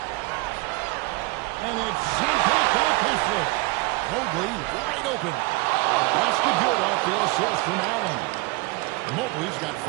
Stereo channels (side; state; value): left; quieter; 23.5 dB